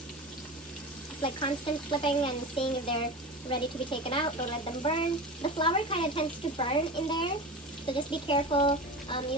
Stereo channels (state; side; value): normal; both; correlation 0.29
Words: It's like constant flipping and seeing if they're ready to be taken out. Don't let them burn. The flour kind of tends to burn in there, so just be careful.